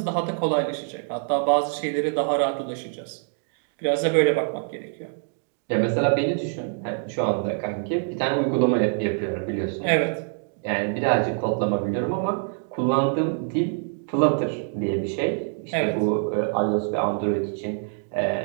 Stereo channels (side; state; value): left; silent; 59 dB below the other